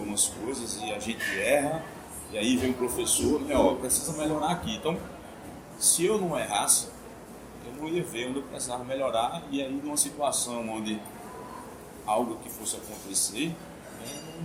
coisas e a gente erra, e aí vem o professor, né, precisa melhorar aqui. Então, se eu não errasse, eu não ia ver onde eu precisava melhorar, e aí numa situação onde algo que fosse acontecer, eu não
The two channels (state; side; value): identical; both; correlation 1.00